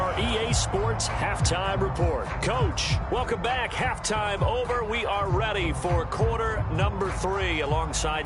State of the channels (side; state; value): both; identical; correlation 1.00